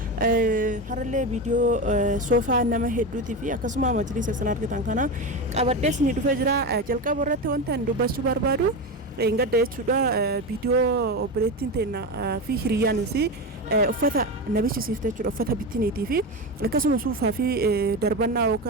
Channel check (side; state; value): both; normal; correlation 0.19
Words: harallee viidiyoo soofaa nama hedduutii fi akkasuma majlisa isin argitan kana qabadhee isin dhufee jira. Jalqaba irratti wanta ani dubbachuu barbaadu gadda jechuudha. Viidiyoo obboleettiin teenya fi hiriyyaan isii uffata nabichi siifte jechuudha. Uffata bittiniitii fi akkasuma suufaa fi darbannaa